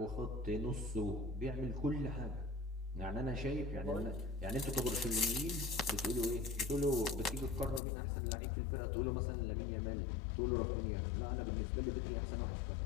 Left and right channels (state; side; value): drops out; right; at 7.8 s